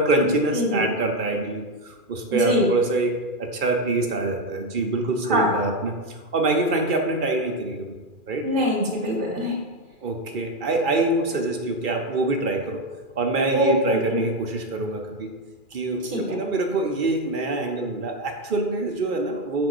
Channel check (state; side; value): late; left; 2.4 ms